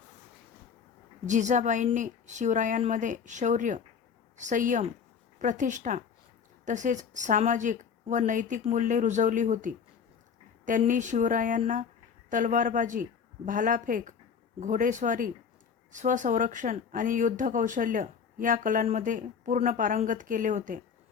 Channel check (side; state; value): right; quieter; 6.6 dB